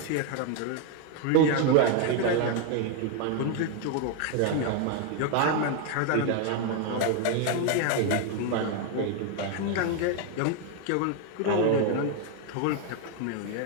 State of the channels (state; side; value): different; both; correlation 0.01